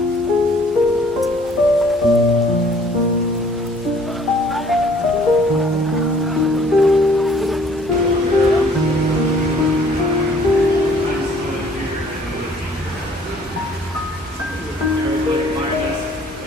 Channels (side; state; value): both; normal; correlation 0.57